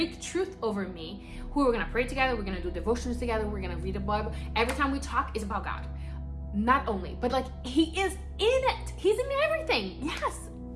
truth over me, who we're gonna pray together, we're gonna do devotions together, we're gonna read the Bible. Every time we talk, it's about God. Not only, but like he is in it. He's in everything. Yes.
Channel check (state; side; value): identical; both; correlation 1.00